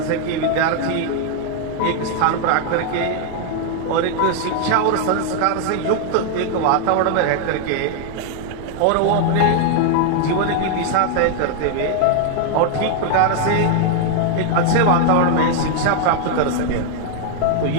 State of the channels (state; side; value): different; both; correlation 0.00